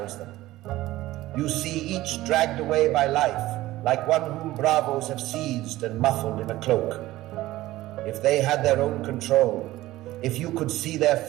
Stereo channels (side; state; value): left; quieter; 16.6 dB